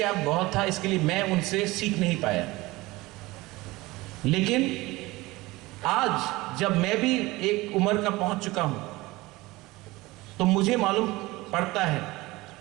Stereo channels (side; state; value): left; quieter; 20.5 dB